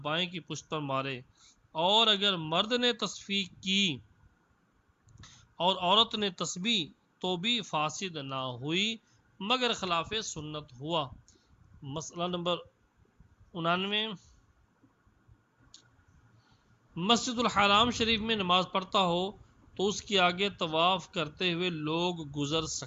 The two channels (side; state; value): both; identical; correlation 1.00